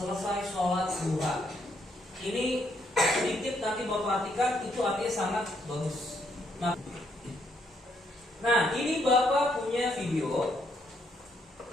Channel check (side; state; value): both; normal; correlation 0.73